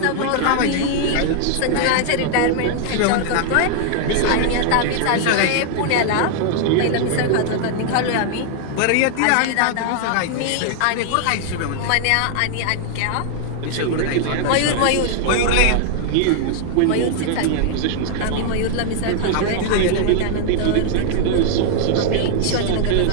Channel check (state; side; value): different; both; correlation 0.00